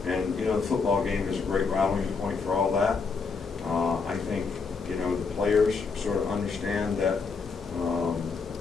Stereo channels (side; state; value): right; quieter; 4.9 dB